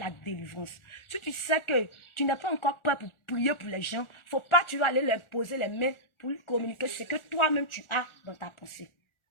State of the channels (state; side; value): late; right; 1.4 ms